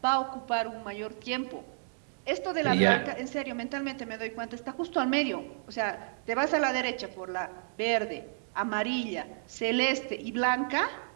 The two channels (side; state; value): left; silent; digital silence